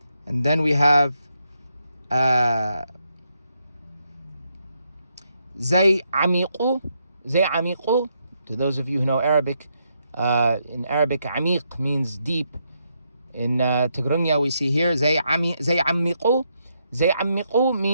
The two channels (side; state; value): both; inverted; correlation -0.79